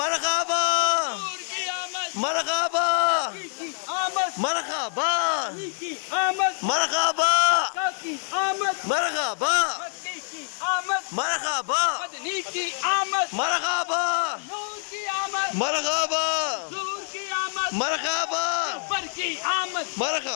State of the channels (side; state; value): right; silent; digital silence